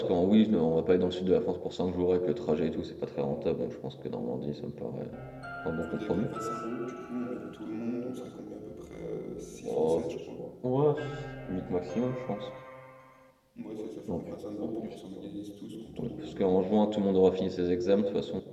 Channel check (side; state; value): both; identical; correlation 1.00